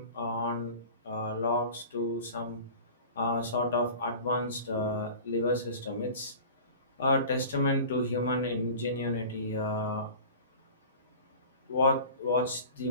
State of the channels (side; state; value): both; inverted; correlation -0.39